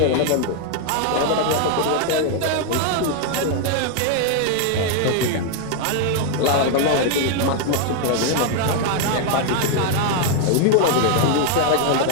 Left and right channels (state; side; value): different; both; correlation 0.01